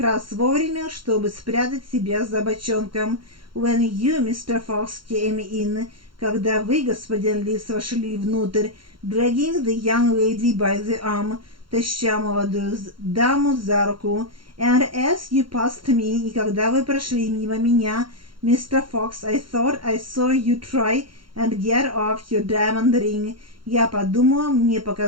раз вовремя, чтобы спрятать себя за бочонком. When you, Mr. Fox, came in, когда вы, господин Лис, вошли внутрь, dragging the young lady by the arm, таща молодую даму за руку, and as you passed me, и когда вы прошли мимо меня, Mr. Fox, I thought I saw you try and get off your diamond ring. Я подумала, мне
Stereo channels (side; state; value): left; late; 0.73 ms